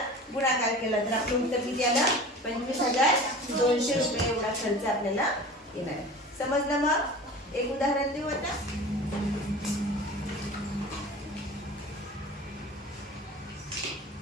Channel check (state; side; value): normal; both; correlation 0.38